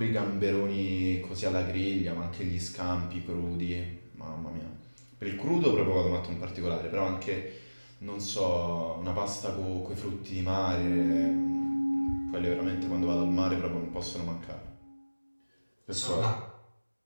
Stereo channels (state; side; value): inverted; both; correlation -1.00